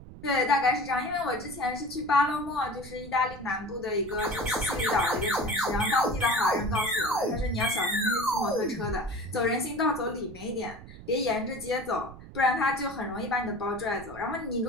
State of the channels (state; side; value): noise; right; rumble, 16 dB below the sound